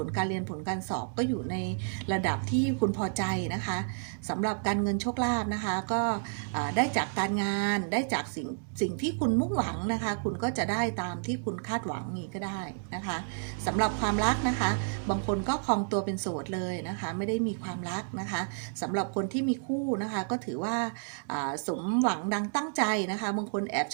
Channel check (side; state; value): left; silent; digital silence